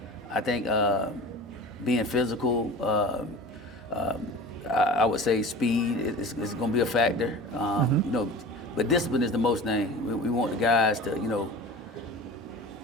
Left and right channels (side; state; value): both; normal; correlation 0.37